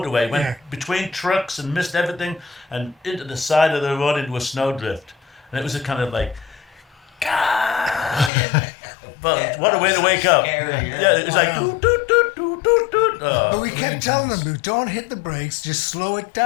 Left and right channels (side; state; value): right; drops out; at 8.3 s